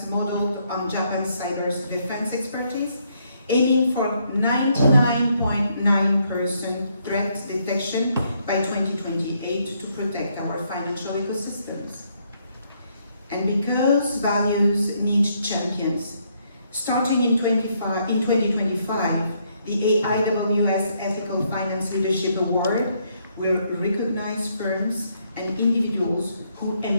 modeled on Japan's cyber defense expertise, aiming for 99.9% threat detection by 2028 to protect our financial ecosystems. And because values need champions, starting in 2025, the AIWS Ethical Finance Leadership Award will recognize firms and individuals who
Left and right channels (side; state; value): both; inverted; correlation -0.73